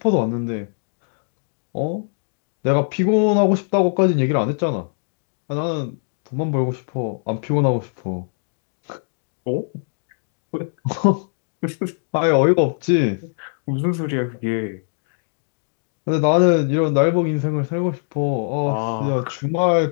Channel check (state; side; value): silent; right; digital silence